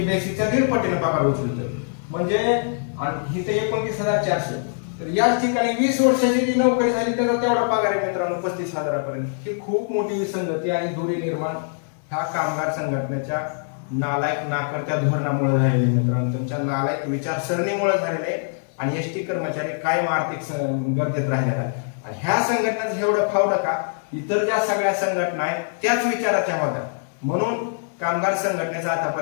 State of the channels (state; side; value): silent; right; digital silence